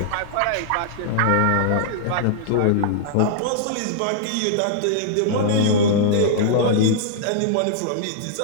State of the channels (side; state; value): both; different; correlation -0.01